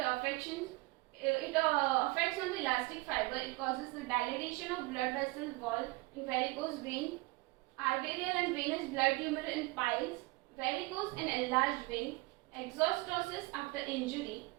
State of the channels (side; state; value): left; quieter; 22.9 dB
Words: affections, it affects on the elastic fiber. It causes the dilatation of blood vessel wall in varicose vein, arterial and venous blood tumor in piles, varicose and enlarged vein, exostosis after injury